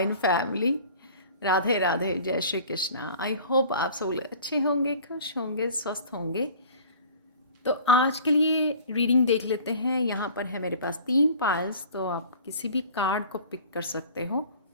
family. Radhe Radhe, जय Shri Krishna. I hope आप सब लोग अच्छे होंगे, खुश होंगे, स्वस्थ होंगे। तो आज के लिए रीडिंग देख लेते हैं। यहाँ पर है मेरे पास 3 पाइल्स, तो आप किसी भी कार्ड को पिक कर सकते हो।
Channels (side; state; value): both; inverted; correlation -0.46